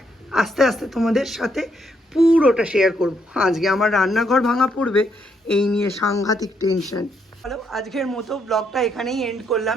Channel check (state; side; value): normal; both; correlation 0.75